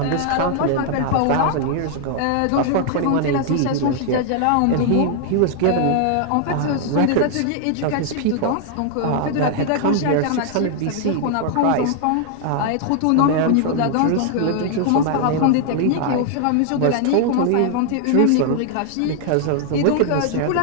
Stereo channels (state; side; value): different; both; correlation 0.00